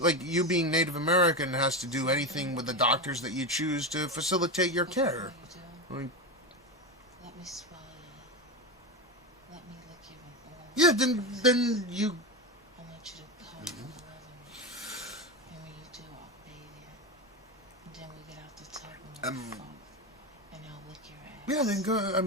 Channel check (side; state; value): both; normal; correlation 0.16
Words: being Native American has to do anything with the doctors that you choose to facilitate your care. Let me swallow you. Let me lick you with all. Yeah, then you. I want you to come and love me. And when you do, I'll bathe you. And then we get out the tub and we'll fuck. And I'll lick your ass. Yeah, then go. I